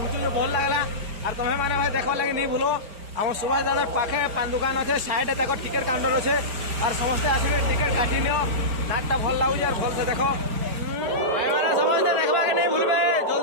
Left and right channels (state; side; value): late; left; 4.8 ms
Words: भल लगला। और तुम्हें मैंने भाई देखवा लगे नहीं भूलो आम सुभाष दादा पाखे पान दुकान अच्छे साइड तक टिकेट काउंटर अच्छे और समस्ते आसवे टिकेट काटी नियो नाटा भल लगुच और भल से देख भाई मैंने समस्ते देखवा के नहीं भूलबे